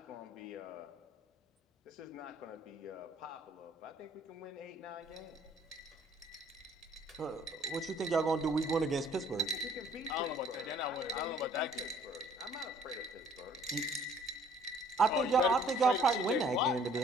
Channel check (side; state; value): both; normal; correlation 0.57